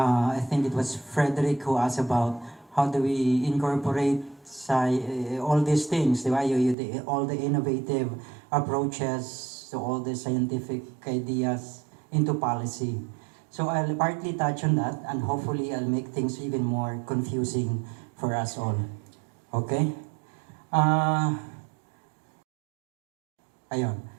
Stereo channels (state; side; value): drops out; left; at 6.8 s